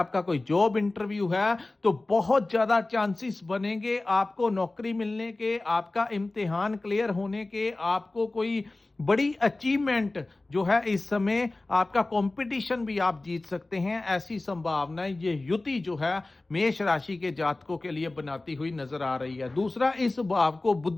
कोई जॉब इंटरव्यू है, तो बहुत ज्यादा चांसेस बनेंगे आपको नौकरी मिलने के, आपका इम्तिहान क्लियर होने के, आपको कोई बड़ी अचीवमेंट जो है इस समय, आपका कंपटीशन भी आप जीत सकते हैं। ऐसी संभावनाएं ये युति जो है मेष राशि के जातकों के लिए बनाती हुई नजर आ रही है। दूसरा, इस भाव को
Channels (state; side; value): quieter; right; 3.0 dB